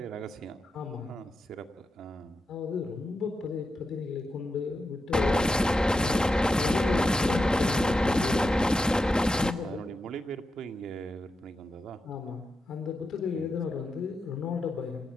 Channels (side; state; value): both; normal; correlation 0.88